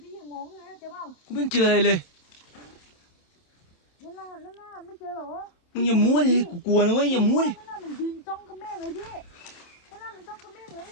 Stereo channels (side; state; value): right; late; 27 ms